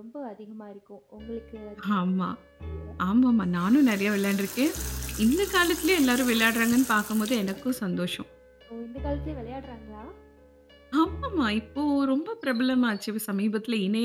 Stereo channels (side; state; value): both; identical; correlation 1.00